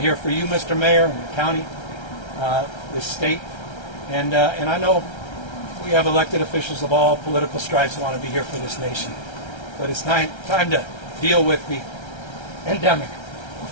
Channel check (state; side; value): late; right; 1.3 ms